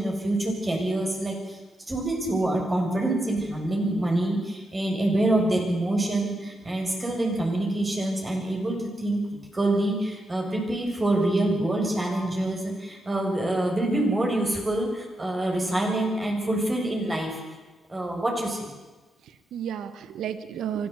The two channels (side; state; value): both; normal; correlation 0.84